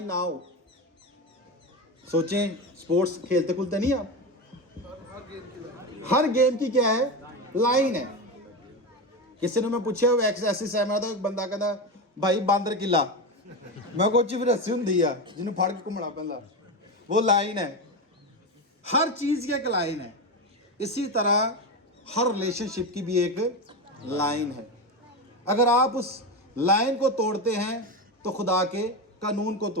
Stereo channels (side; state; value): both; normal; correlation 0.17